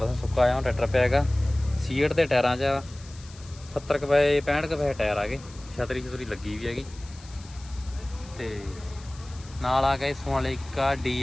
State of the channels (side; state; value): left; noise; hiss, 21 dB below the sound